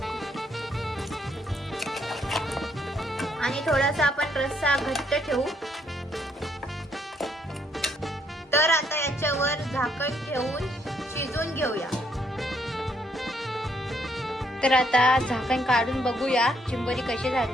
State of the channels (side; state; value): both; normal; correlation 0.72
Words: आणि थोडासा आपण रस्सा घट्ट ठेवू. तर आता याच्यावर झाकण ठेवून शिजवून घेऊया. तर आता झाकण काढून बघूया चिंबोरी कशी